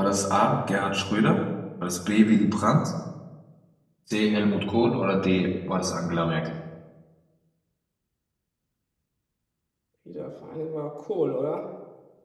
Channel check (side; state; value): both; identical; correlation 1.00